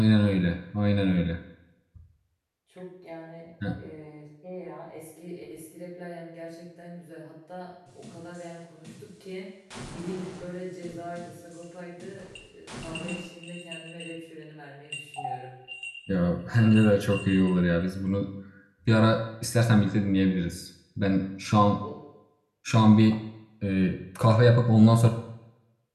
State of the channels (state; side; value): identical; both; correlation 1.00